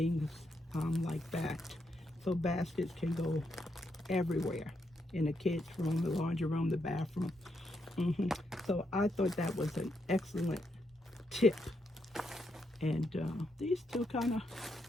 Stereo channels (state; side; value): normal; both; correlation 0.80